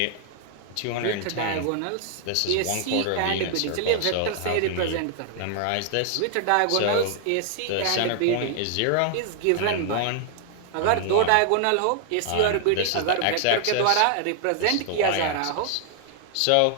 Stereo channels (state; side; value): different; both; correlation 0.00